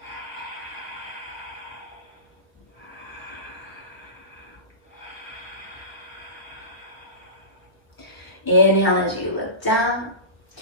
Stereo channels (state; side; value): late; right; 1.1 ms